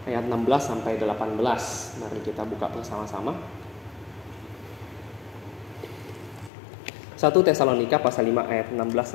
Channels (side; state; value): right; drops out; at 6.5 s